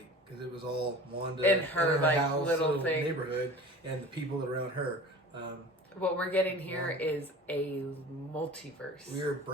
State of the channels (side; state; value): both; normal; correlation 0.40